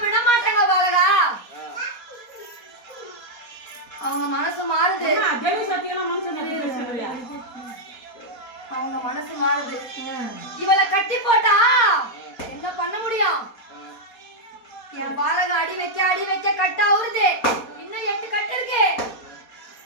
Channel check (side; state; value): right; late; 4.2 ms